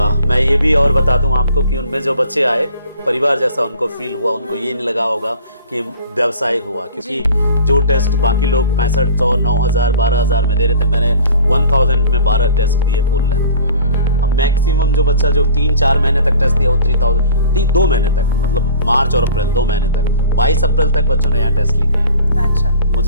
मैं ये भी और बता दूं आपको कि उनमें जो बच्चे आए परिवार जैसा उनको फील हुआ, उनको ये नहीं लगा होगा कि व्यवसाय हुआ, क्योंकि जो टेस्ट बाकी लोग 6500, 9000, 12000 में दे रहे थे, मैंने 1000 में 12 टेस्ट दिए फुल लेंथ। अब मैक्सिमम जो बच्चा जो 3-4 महीने तक टेस्ट दिया वो 3000, 2 महीने तक, मतलब मार्च और अप्रैल 2 महीने तक, 22 अप्रैल तक बच्चों ने यहाँ टेस्ट लिखे हैं। अच्छा।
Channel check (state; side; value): inverted; both; correlation -0.45